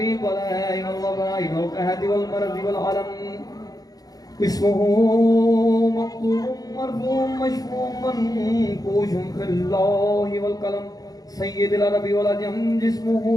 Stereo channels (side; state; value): right; late; 0.18 ms